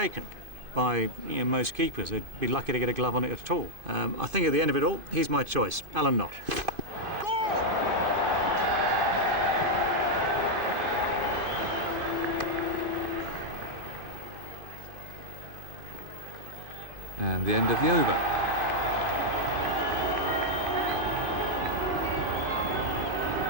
by most keepers. They'd be lucky to get a glove on it at all. I think at the end of it all, he's my choice, Alan Knott. And the end of the over.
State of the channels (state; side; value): late; left; 2.5 ms